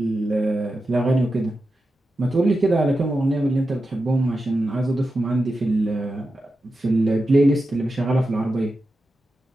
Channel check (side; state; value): both; normal; correlation 0.90